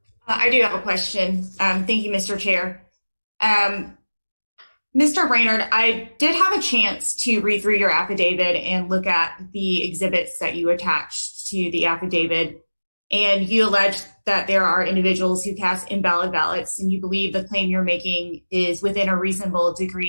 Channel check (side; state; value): both; inverted; correlation -1.00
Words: I do have a question. Thank you, Mr. Chair. Mr. Brainerd, I did have a chance to read through your affidavit and look at the exhibits that you attached to the affidavit. And you allege that there are individuals who cast invalid ballots, and you believe the claim you're making is within a reasonable